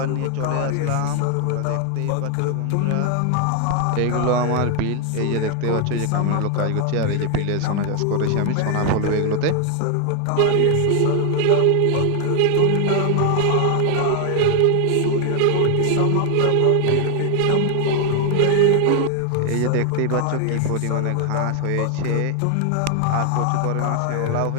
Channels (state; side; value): different; both; correlation 0.00